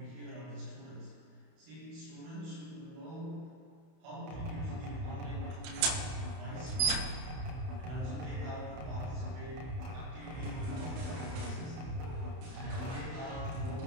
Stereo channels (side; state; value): left; late; 31 ms